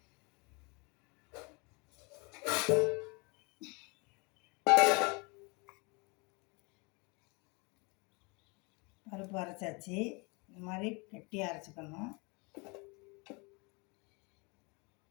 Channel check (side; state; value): right; quieter; 29.7 dB